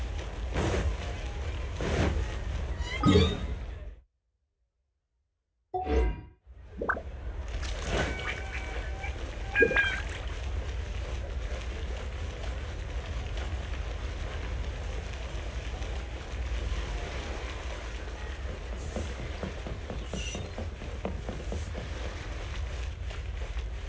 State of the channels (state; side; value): identical; both; correlation 1.00